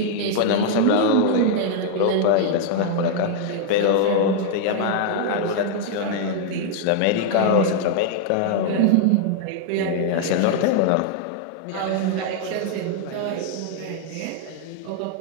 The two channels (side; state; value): both; different; correlation 0.00